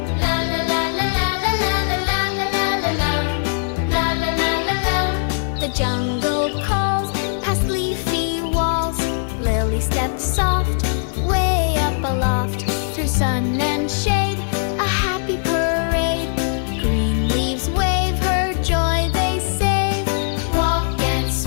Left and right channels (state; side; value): silent; right; digital silence